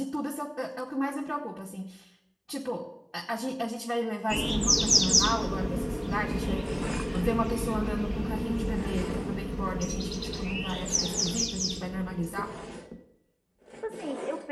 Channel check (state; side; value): identical; both; correlation 1.00